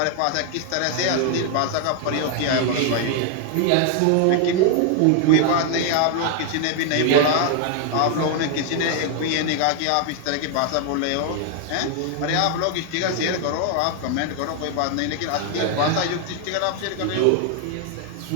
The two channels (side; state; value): both; different; correlation 0.00